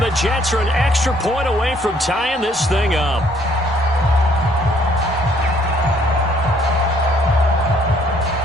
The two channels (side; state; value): both; normal; correlation 0.64